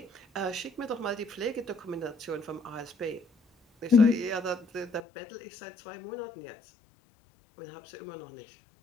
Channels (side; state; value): right; drops out; at 5.0 s